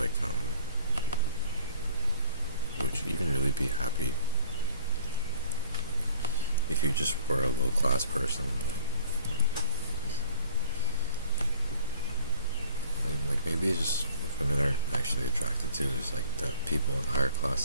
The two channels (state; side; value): inverted; both; correlation -0.53